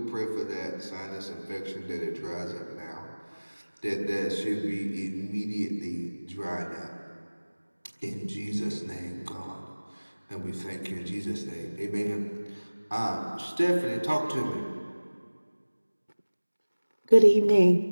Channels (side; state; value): both; inverted; correlation -1.00